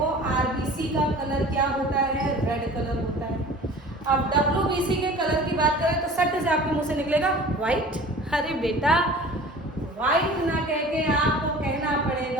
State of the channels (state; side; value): normal; both; correlation 0.42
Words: आरबीसी का कलर क्या होता है, रेड कलर होता है। अब डब्ल्यूबीसी के कलर की बात करें तो सट से आपके मुंह से निकलेगा व्हाइट। अरे बेटा व्हाइट ना कह के आपको कहना